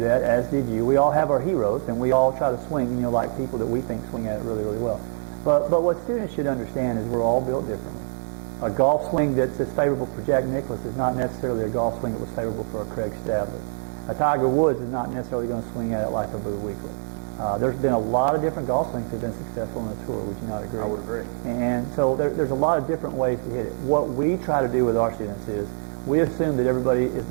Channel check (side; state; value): left; silent; digital silence